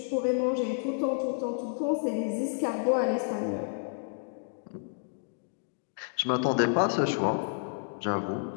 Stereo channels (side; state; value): right; silent; digital silence